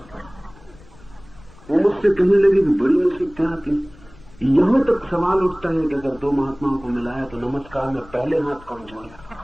वो मुझसे कहने लगे कि बड़ी मुसीबतें आती। यहां तक सवाल उठता है कि अगर दो महात्माओं को मिलाया तो नमस्कार में पहले हाथ कौन जोड़े।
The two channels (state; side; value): noise; left; rumble, 23 dB below the sound